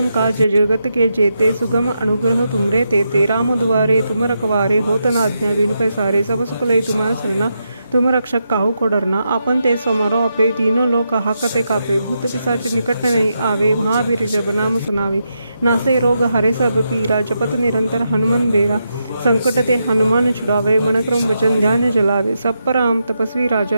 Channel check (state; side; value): inverted; both; correlation -0.84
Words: काज जगत के जेते सुगम अनुग्रह तुमरे तेते राम दुआरे तुम रखवारे होत न आज्ञा बिनु पैसारे सब सुख लय तुम्हार सरना तुम रक्षक काहू को डरना आपन ते समारो अपे तीनों लोक हाकते कापे भूत पिशाच निकट नहीं आवे महावीर जब नाम सुनावे नासे रोग हरे सब पीरा जपत निरंतर हनुमान बेरा संकट ते हनुमान छुड़ावे मन क्रम वचन ध्यान जलावे सब पर राम तपस्वी